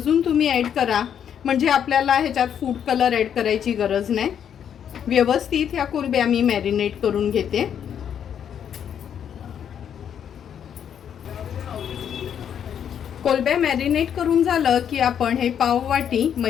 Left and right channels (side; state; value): right; quieter; 8.7 dB